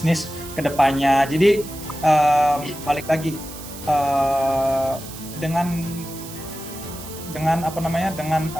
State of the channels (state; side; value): noise; right; hiss, 14 dB below the sound